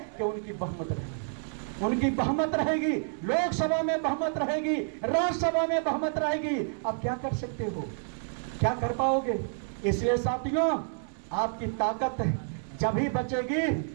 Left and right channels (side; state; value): left; silent; digital silence